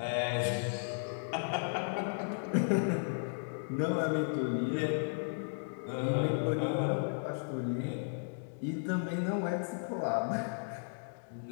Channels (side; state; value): right; silent; digital silence